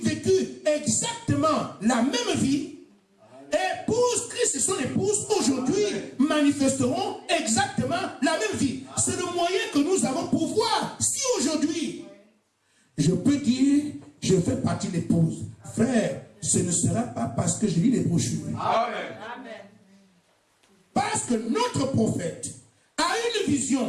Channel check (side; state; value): both; identical; correlation 1.00